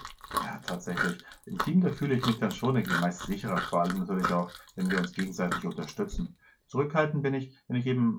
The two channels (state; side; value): identical; both; correlation 1.00